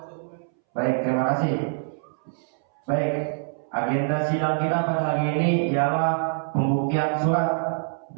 hukum. Baik, terima kasih. Baik, agenda sidang kita pada hari ini ialah pembuktian surat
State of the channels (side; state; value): left; silent; 62 dB below the other